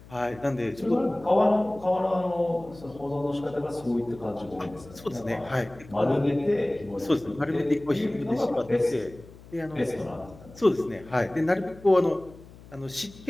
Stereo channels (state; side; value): noise; left; hum, 20 dB below the sound